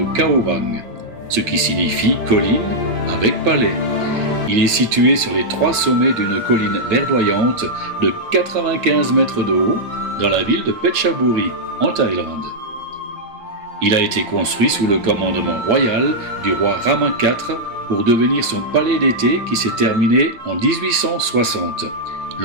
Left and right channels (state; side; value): late; left; 8.5 ms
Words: Kaowang, ce qui signifie colline avec palais. Il est situé sur les 3 sommets d'une colline verdoyante de 95 mètres de haut dans la ville de Phetchaburi, en Thaïlande. Il a été construit sous le commandement royal du roi Rama IV pour devenir son palais d'été qui s'est terminé en 1860.